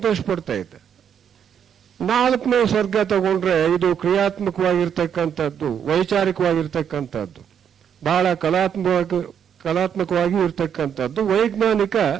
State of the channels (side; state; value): left; quieter; 8.3 dB